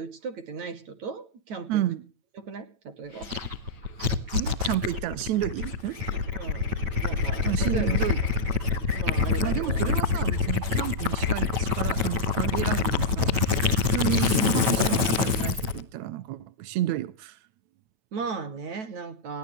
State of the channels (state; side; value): late; left; 9.1 ms